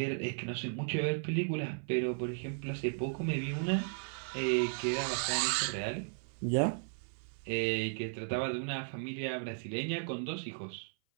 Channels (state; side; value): silent; left; 54 dB below the other